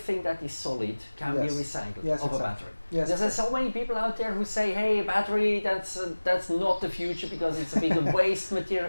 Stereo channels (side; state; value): both; inverted; correlation -1.00